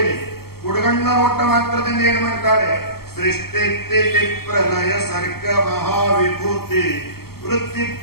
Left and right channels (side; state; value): right; late; 0.95 ms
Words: ಇದೆ. ಹುಡುಗಣ್ಣ ನೋಟ ಮಾತ್ರದಿಂದ ಏನು ಮಾಡ್ತಾಳೆ? ಸೃಷ್ಟಿ ಪ್ರಲಯ ಸರ್ಗ ಮಹಾವಿಭೂತಿ ವೃತ್ತಿ